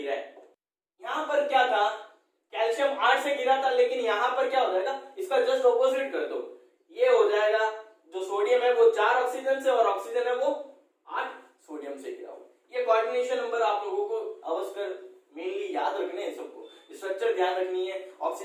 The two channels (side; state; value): both; identical; correlation 1.00